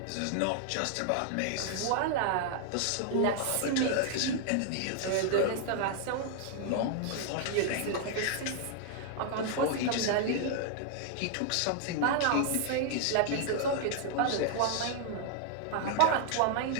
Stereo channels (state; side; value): different; both; correlation 0.00